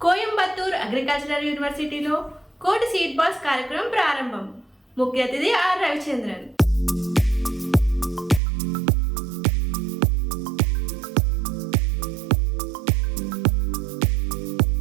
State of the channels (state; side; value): drops out; left; at 8.4 s